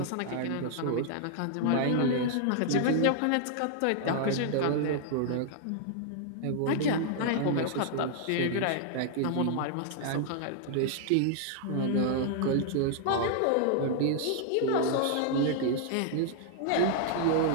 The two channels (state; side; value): different; both; correlation -0.01